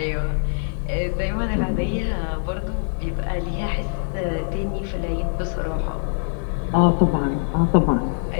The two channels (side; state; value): right; silent; digital silence